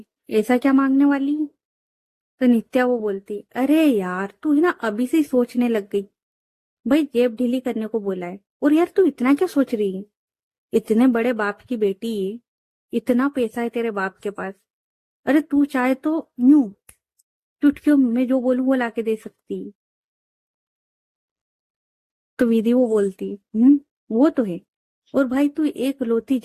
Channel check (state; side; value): identical; both; correlation 1.00